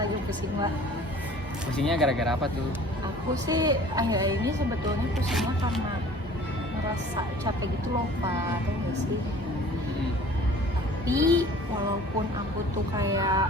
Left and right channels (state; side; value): normal; both; correlation 0.48